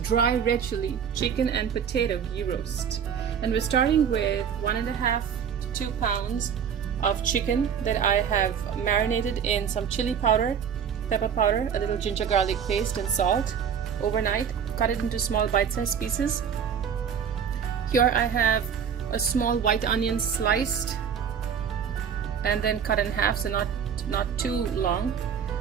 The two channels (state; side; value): quieter; left; 7.7 dB